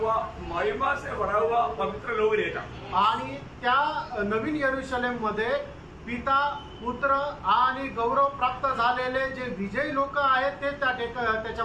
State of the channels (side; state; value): both; identical; correlation 1.00